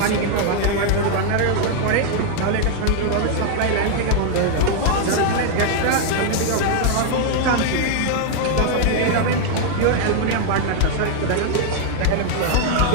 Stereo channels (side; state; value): both; different; correlation 0.00